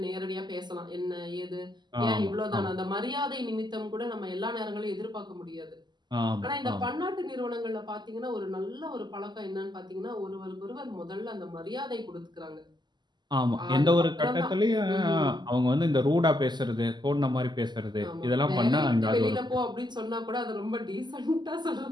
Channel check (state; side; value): late; left; 0.21 ms